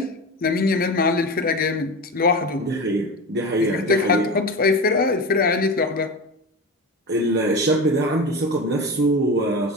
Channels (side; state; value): both; normal; correlation 0.26